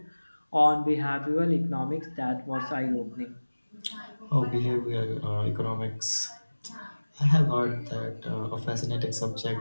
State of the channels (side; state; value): both; inverted; correlation -1.00